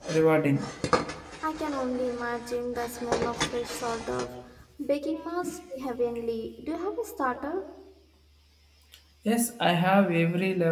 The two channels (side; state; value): both; identical; correlation 1.00